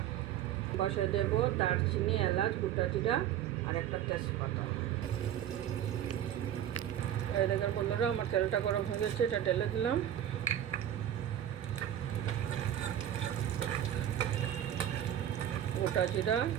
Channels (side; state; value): left; quieter; 10.9 dB